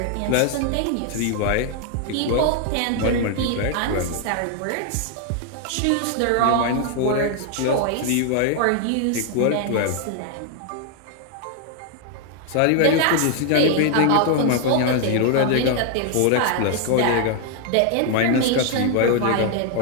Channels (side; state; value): both; different; correlation 0.00